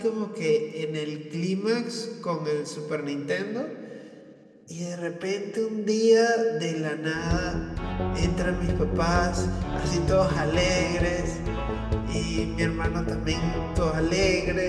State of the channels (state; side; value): identical; both; correlation 1.00